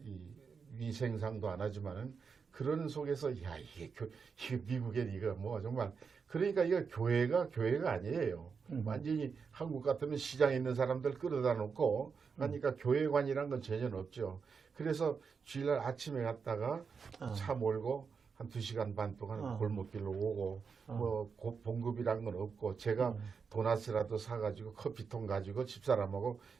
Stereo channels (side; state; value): left; quieter; 5.7 dB